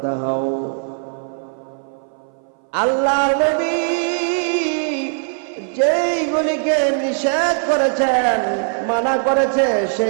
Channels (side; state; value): left; silent; 59 dB below the other